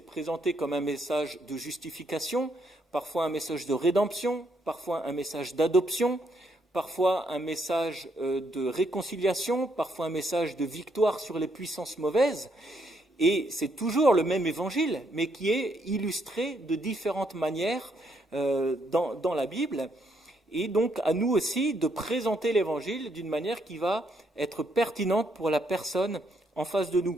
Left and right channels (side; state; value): both; normal; correlation 0.74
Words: comme un message de justification, parfois un message de rédemption, parfois un message d'adoption, parfois un message de réconciliation, parfois un message de victoire sur les puissances mauvaises. Et c'est toujours le même évangile, mais qui est illustré de différentes manières dans la Bible. Et donc à nous aussi de présenter l'évangile d'une manière qui va être pertinente pour la personne en face de